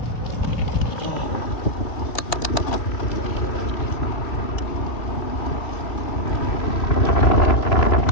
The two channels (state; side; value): late; right; 3.1 ms